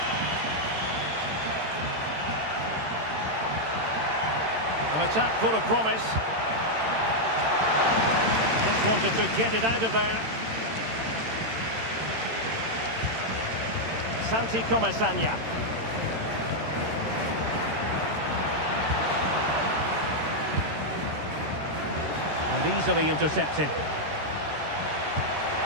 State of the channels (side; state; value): left; late; 13 ms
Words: An attack full of promise. Just wanted to get it out of there. Santi Comesaña. And easily intercepted.